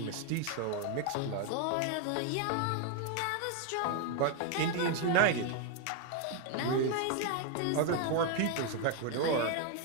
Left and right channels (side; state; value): both; different; correlation 0.01